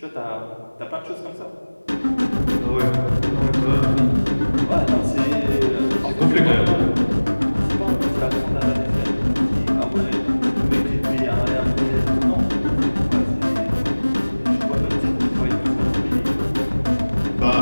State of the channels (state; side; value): inverted; both; correlation -1.00